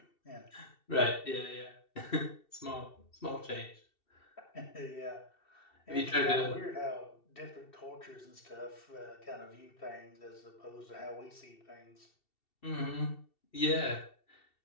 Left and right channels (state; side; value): late; right; 2.7 ms